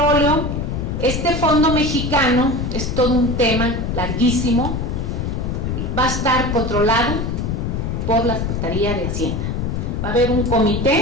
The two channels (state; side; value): noise; left; rumble, 2 dB below the sound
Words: Este Fondo Mexicano es todo un tema larguísimo. Va a estar controlado por la Secretaría de Hacienda. Va a haber un